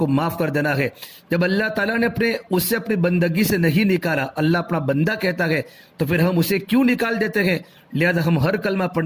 معاف کر دینا ہے۔ جب اللہ تعالیٰ نے اسے اپنی بندگی سے نہیں نکالا، اللہ اپنا بندہ کہتا ہے تو پھر ہم اسے کیوں نکال دیتے ہیں؟ لہذا ہم ہر کلمہ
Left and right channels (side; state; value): both; identical; correlation 1.00